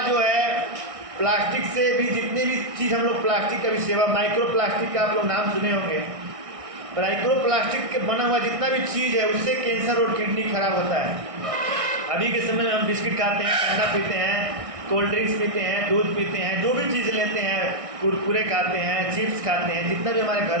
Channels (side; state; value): left; late; 1.6 ms